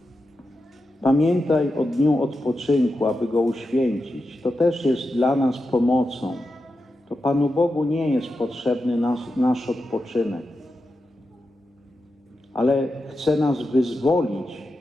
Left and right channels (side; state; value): both; normal; correlation 0.89